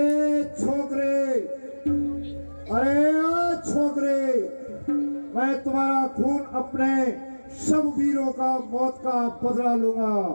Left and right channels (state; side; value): inverted; both; correlation -1.00